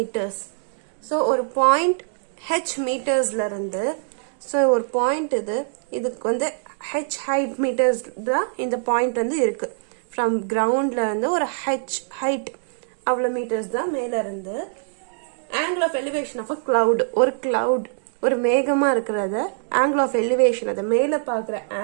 So ஒரு point h meters la irundhu so ஒரு point இதுக்கு வந்து h height meters தான் இந்த point வந்து இருக்கு from ground la இருந்து ஒரு h height அவ்வளவு meters தான் மேல இருந்து angle of elevation of a cloud ஒரு cloud ஒரு மேகமா இருக்குறத angle of elevation அத மேல பார்க்குற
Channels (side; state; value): left; silent; digital silence